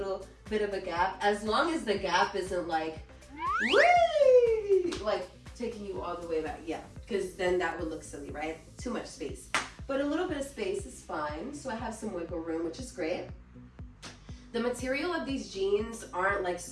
bit of a gap, as long as the gap isn't like, whee! Like taking you all the way back. Yeah, because then that would look silly, right? Too much space. But a little bit of space is fine. So I have some wiggle room, which is great. The material of these jeans aren't like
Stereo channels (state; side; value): identical; both; correlation 1.00